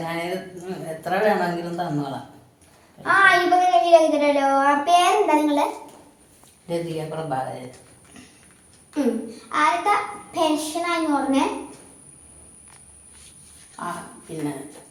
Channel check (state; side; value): identical; both; correlation 1.00